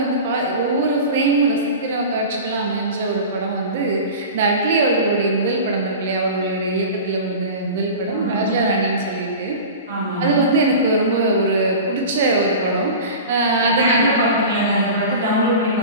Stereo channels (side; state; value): both; inverted; correlation -0.33